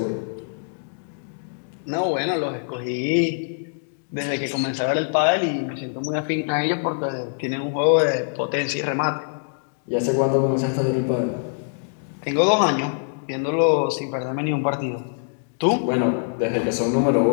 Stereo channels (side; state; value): right; silent; digital silence